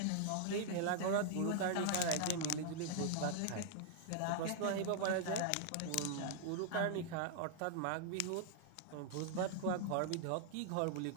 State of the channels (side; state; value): both; different; correlation -0.01